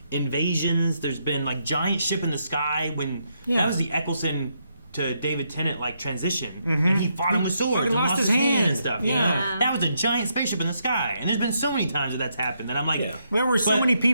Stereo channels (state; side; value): inverted; both; correlation -0.78